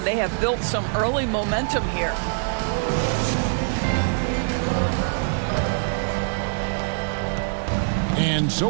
They have built some early momentum here. And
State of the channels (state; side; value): silent; left; digital silence